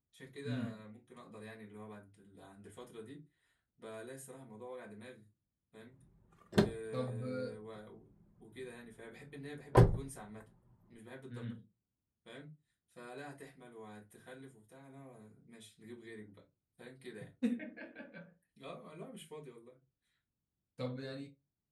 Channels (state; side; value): identical; both; correlation 1.00